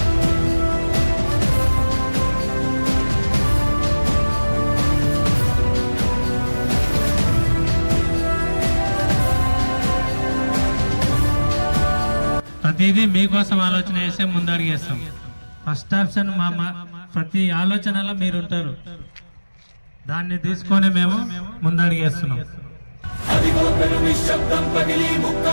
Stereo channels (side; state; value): both; inverted; correlation -1.00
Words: ప్రతిదీ మీకోసం ఆలోచన చేసే ముందడిగేస్తాం. ఫస్ట్ ఆప్షన్ ప్రతి ఆలోచనలో మీరు ఉంటారు, దాన్ని తీసుకొని మేము ముందడిగేస్తున్నాం. అదిగో పెను నిశ్శబ్దం పగిలి